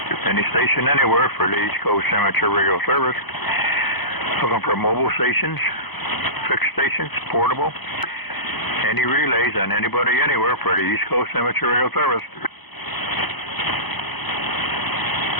Any station anywhere for the East Coast Amateur Radio Service. Looking for mobile stations, fixed stations, portable, any relays, and anybody anywhere for the East Coast Amateur Radio Service.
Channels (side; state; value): right; late; 0.99 ms